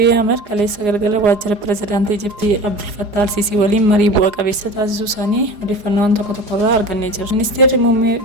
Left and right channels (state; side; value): late; left; 4.8 ms